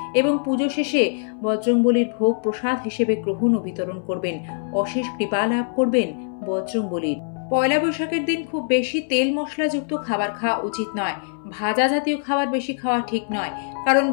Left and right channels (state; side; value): silent; right; 61 dB below the other